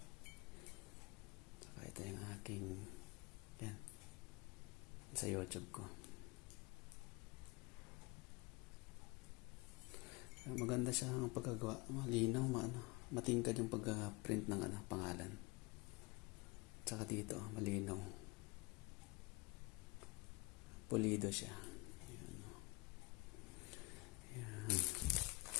Saka ito yung aking yan sa YouTube ko. Maganda siya ang pagkagawa. Malinaw, matingkad yung pag-print ng pangalan. Saka dito, malinaw. Pulido siya. Ayan. Ayan.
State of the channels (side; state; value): right; quieter; 25.6 dB